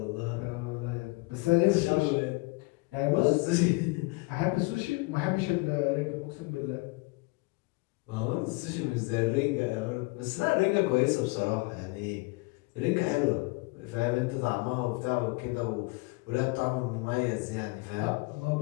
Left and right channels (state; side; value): quieter; right; 25.7 dB